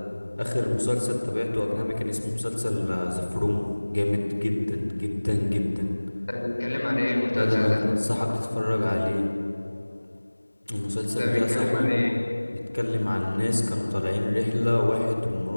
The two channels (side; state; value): both; inverted; correlation -1.00